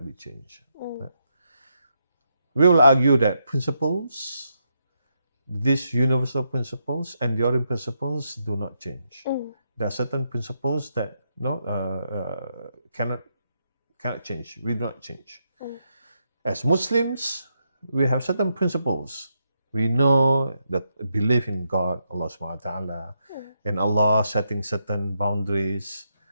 be changed? Right? We will argue that principles, these universal principles, enduring principles do not change. There are certain principles that cannot change. We do not change. As Muslims, we have certain principles. We know that belief in God, Allah subhanahu wa ta'ala, and Allah setting certain boundaries,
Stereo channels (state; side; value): inverted; both; correlation -0.81